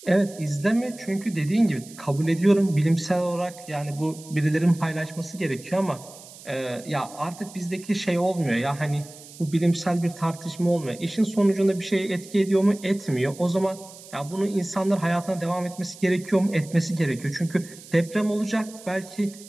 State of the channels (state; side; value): noise; right; hiss, 18 dB below the sound